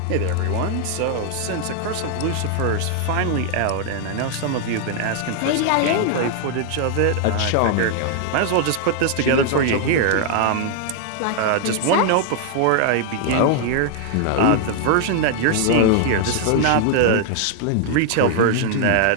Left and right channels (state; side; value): different; both; correlation 0.00